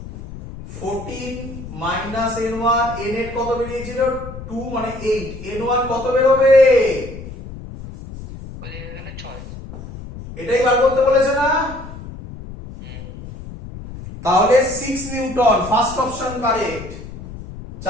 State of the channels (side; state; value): left; noise; rumble, 12 dB below the sound